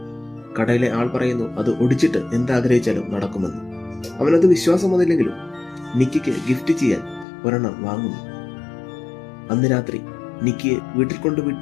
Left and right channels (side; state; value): right; drops out; at 7.2 s